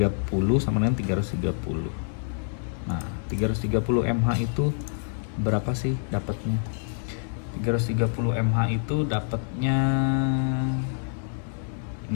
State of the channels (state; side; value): silent; right; 60 dB below the other